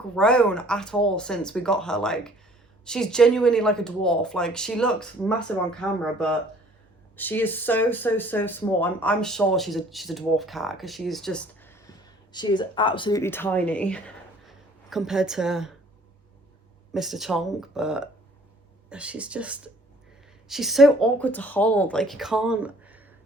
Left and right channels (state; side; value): normal; both; correlation 0.55